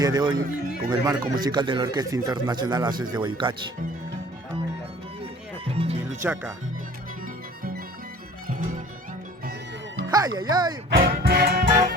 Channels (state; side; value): normal; both; correlation 0.48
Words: de hoy con el marco musical de la Orquesta Internacional Haces de Guayucachi. Miluchaca. ¡Ay, ay, ay!